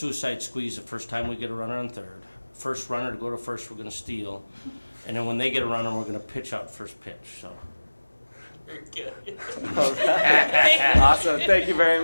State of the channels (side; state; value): both; inverted; correlation -1.00